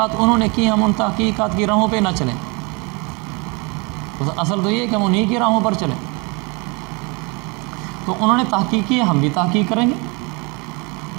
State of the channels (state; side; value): quieter; left; 29.2 dB